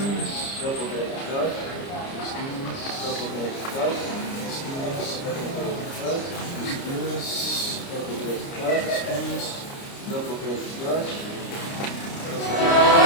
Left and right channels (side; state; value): right; late; 29 ms